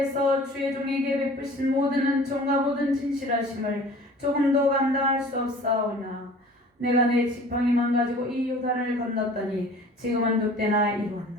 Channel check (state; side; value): normal; both; correlation 0.46